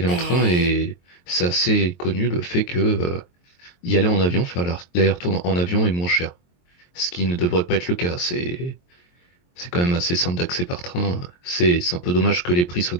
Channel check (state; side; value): late; right; 23 ms